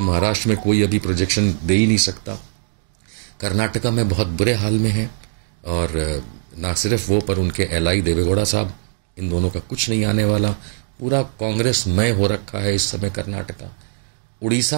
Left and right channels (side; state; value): left; silent; digital silence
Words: में कोई अभी प्रोजेक्शन दे ही नहीं सकता। कर्नाटका में बहुत बुरे हाल में है, और ना सिर्फ वो पर उनके एलआई देवेगौड़ा साहब, इन दोनों का कुछ नहीं आने वाला, पूरा कांग्रेसमय हो रखा है इस समय कर्नाटका।